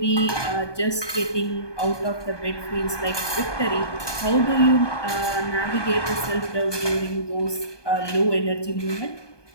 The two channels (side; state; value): right; late; 1.2 ms